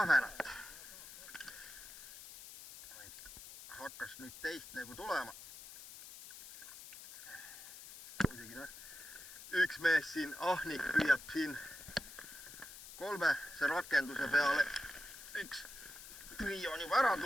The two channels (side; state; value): left; noise; hiss, 14 dB below the sound